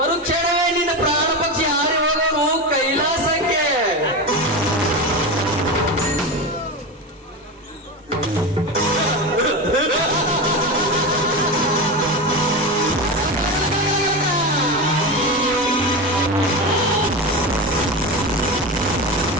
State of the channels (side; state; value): both; normal; correlation 0.20